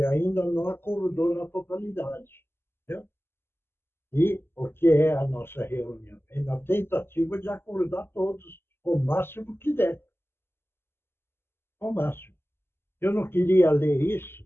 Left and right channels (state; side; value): late; right; 0.11 ms